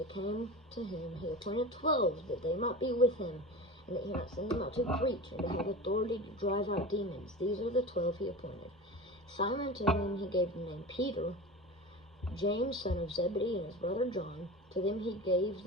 came to him. He appointed 12 that they might be with him, and that he might send them out to preach and to have authority to drive out demons. These are the 12 he appointed. Simon, to whom he gave the name Peter, James, son of Zebedee, and his brother John. To them he gave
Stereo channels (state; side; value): normal; both; correlation 0.30